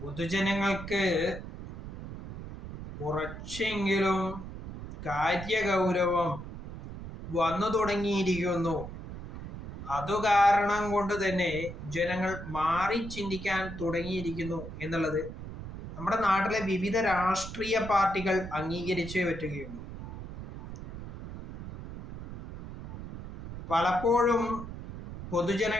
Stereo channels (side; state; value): right; noise; rumble, 10 dB below the sound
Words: പൊതുജനങ്ങൾക്ക് കുറച്ചെങ്കിലും കാര്യഗൗരവം വന്നു തുടങ്ങിയിരിക്കുന്നു. അതുകാരണം കൊണ്ട് തന്നെ ജനങ്ങൾ മാറി ചിന്തിക്കാൻ തുടങ്ങിയിരിക്കുന്നു എന്നുള്ളത് നമ്മുടെ നാട്ടിലെ വിവിധ രാഷ്ട്രീയ പാർട്ടികൾ അംഗീകരിച്ചേ പറ്റുകയുള്ളൂ. പലപ്പോഴും